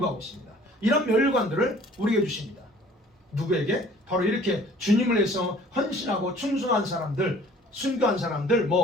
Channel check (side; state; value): both; normal; correlation 0.52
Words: 있습니다. 이런 면류관들을 우리에게 주십니다. 누구에게? 바로 이렇게 주님을 위해서 헌신하고 충성한 사람들, 순교한 사람들,